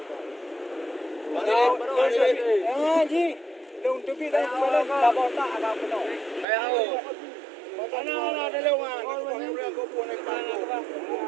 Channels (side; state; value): left; drops out; at 6.5 s